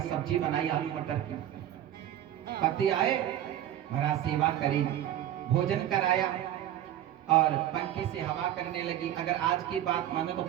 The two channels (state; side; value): quieter; left; 11.9 dB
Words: सब्जी बनाई आलू मटर की। पति आए, महाराज सेवा करी, भोजन कराया और पंखे से हवा करने लगी। अगर आज की बात माने तो